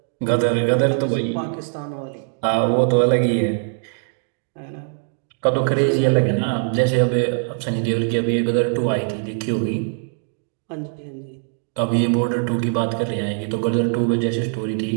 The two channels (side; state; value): left; silent; digital silence